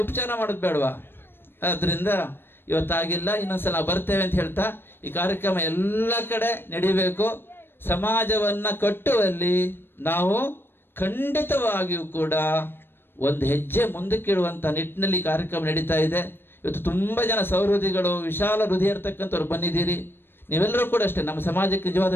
ಉಪಚಾರ ಮಾಡೋದು ಬೇಡವಾ. ಆದ್ದರಿಂದ ಇವತ್ತಾಗಿಲ್ಲ, ಇನ್ನೊಂದ್ಸಲ ನಾವು ಬರ್ತೇವೆ ಅಂತ ಹೇಳ್ತಾ ಈ ಕಾರ್ಯಕ್ರಮ ಎಲ್ಲ ಕಡೆ ನಡಿಬೇಕು. ಸಮಾಜವನ್ನು ಕಟ್ಟುವಲ್ಲಿ ನಾವು ಖಂಡಿತವಾಗಿಯೂ ಕೂಡ ಒಂದು ಹೆಜ್ಜೆ ಮುಂದಕ್ಕಿಡುವಂಥ ನಿಟ್ಟಿನಲ್ಲಿ ಕಾರ್ಯಕ್ರಮ ನಡೀತಾ ಇದೆ. ಇವತ್ತು ತುಂಬ ಜನ ಸೌಹೃದಿಗಳು, ವಿಶಾಲ ಹೃದಯ ಇರ್ತಕ್ಕಂಥವ್ರು ಬಂದಿದ್ದೀರಿ. ನೀವೆಲ್ಲರೂ ಕೂಡ ಅಷ್ಟೇ ನಮ್ಮ ಸಮಾಜಕ್ಕೆ ನಿಜವಾದ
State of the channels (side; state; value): right; late; 0.10 ms